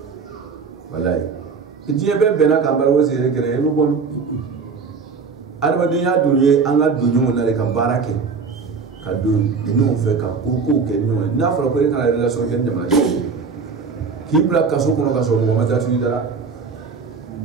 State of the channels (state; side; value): quieter; left; 5.2 dB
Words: walayi diɲɛ bɛɛ bɛnna k'an bari o siri kɛnɛ i bɛ bɔ adamadenya dun ye an ka don ɲɔgɔn na de ka baara kɛ ka don ɲɔgɔn fɛ ka kow kɛ ɲɔgɔn ye n'a fɔra ko e kana relation kɛ ni jamanaden k'i bila kaso kɔnɔ ka sɔrɔ mɔgɔ ma taa tugu i dara